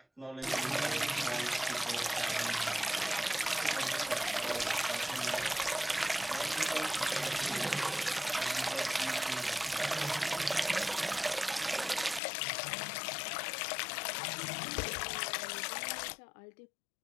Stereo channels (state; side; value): drops out; right; at 12.2 s